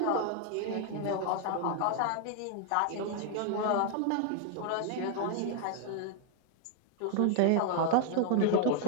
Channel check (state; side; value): different; both; correlation 0.00